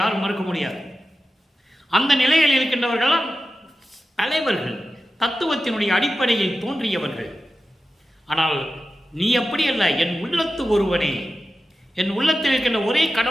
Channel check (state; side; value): normal; both; correlation 0.92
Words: யாரும் மறுக்க முடியாது. அந்த நிலையில் இருக்கின்றவர்கள் தலைவர்கள், தத்துவத்தினுடைய அடிப்படையில் தோன்றியவர்கள். ஆனால் நீ அப்படி அல்ல, என் உள்ளத்து ஒருவனே, என் உள்ளத்தில் இருக்கின்ற ஒரே